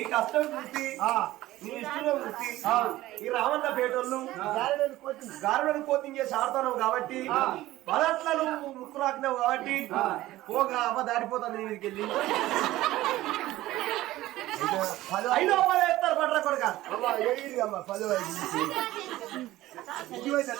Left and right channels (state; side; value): quieter; left; 16.3 dB